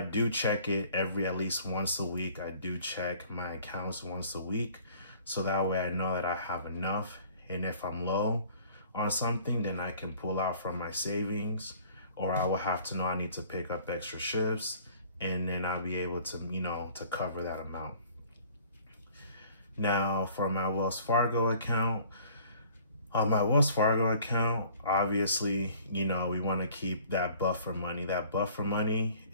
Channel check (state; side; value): inverted; both; correlation -0.53